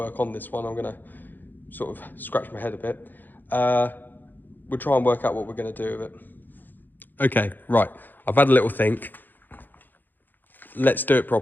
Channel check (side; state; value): right; late; 0.088 ms